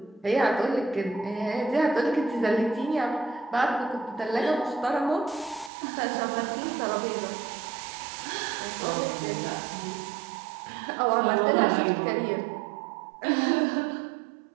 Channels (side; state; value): left; drops out; at 5.7 s